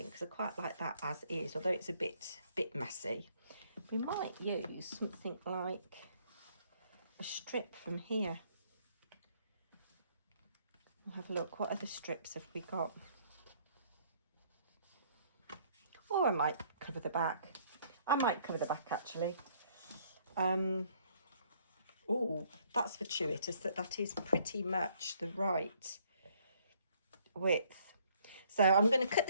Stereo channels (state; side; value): inverted; both; correlation -0.64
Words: because I quite like that as is, although it's a bit messy. We might use something like a strip from here. We'll have a look. What other strips have we got? Or I might cover the back. I might cover the back actually. Oh, that's fortuitous that is pretty much the right width. So I'm going to cut